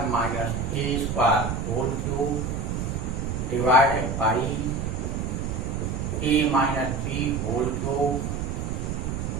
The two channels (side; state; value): right; noise; rumble, 3 dB below the sound